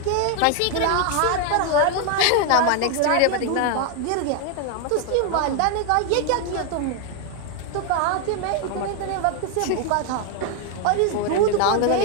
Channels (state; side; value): different; both; correlation 0.00